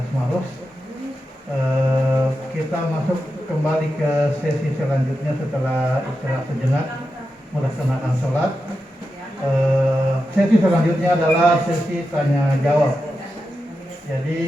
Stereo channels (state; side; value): normal; both; correlation 0.89